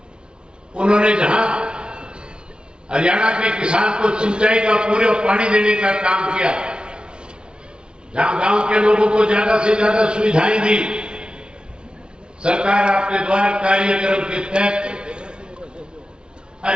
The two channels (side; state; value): left; late; 0.054 ms